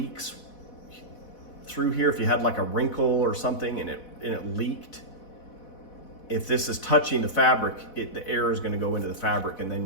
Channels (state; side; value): late; right; 4.1 ms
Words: through here, if you had like a wrinkle or something and it leaked, if this is touching the fabric, the air is going to go into the fabric, and